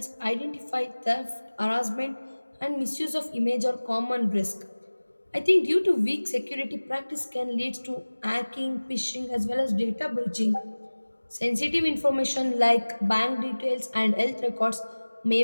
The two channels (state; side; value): inverted; both; correlation -1.00